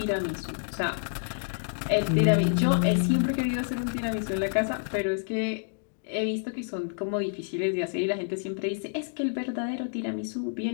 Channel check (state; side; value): silent; right; digital silence